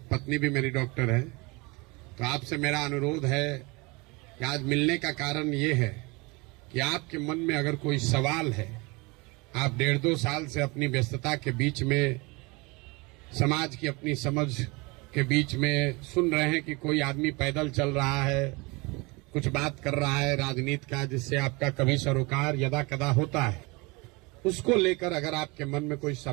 भी मेरी डॉक्टर है। तो आपसे मेरा अनुरोध है कि आज मिलने का कारण ये है कि आपके मन में अगर कोई सवाल है, आप 1.5-2 साल से अपनी व्यस्तता के बीच में, समाज की अपनी समझ के बीच में सुन रहे हैं कि कोई आदमी पैदल चल रहा है, कुछ बात कर रहा है राजनीति का, जिससे आपका कभी सरोकार यदा कदा होता है। उसको लेकर अगर आपके मन में कोई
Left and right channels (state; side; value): quieter; left; 26.1 dB